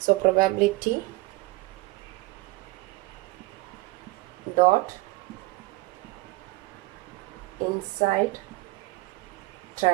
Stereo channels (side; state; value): left; quieter; 22.0 dB